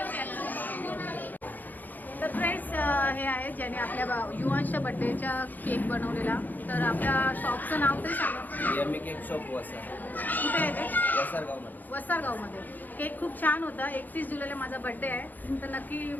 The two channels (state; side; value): late; right; 0.085 ms